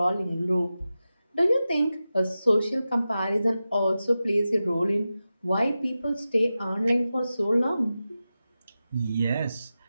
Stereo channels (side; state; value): both; inverted; correlation -0.93